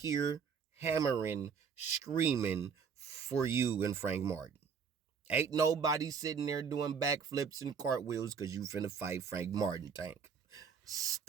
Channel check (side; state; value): left; quieter; 6.5 dB